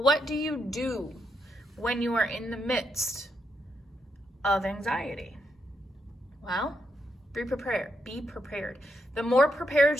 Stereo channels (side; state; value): both; normal; correlation 0.80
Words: what do you do when you are in the midst of anxiety? Well, be prepared. The more prepared